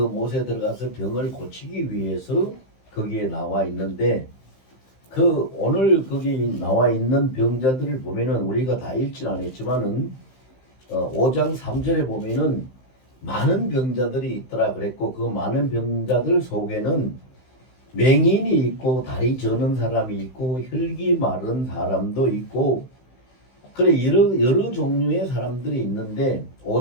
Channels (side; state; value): right; late; 15 ms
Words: 들어가서 병을 고치기 위해서 거기에 나와 있는데 오늘 거기 나와 있는 병자들을 보면은 우리가 다 읽지는 않았지만은 5장 3절에 보면은 많은 병자들이 있더라 그랬고 그 많은 병자들 속에는 맹인이 있고 다리 저는 사람이 있고 혈기 마른 사람도 있고 그래 여러 종류의 사람들이 있는데